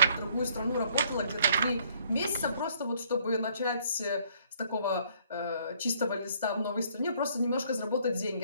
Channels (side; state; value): both; inverted; correlation -0.63